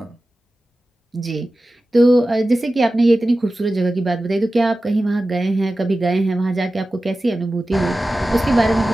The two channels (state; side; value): normal; both; correlation 0.95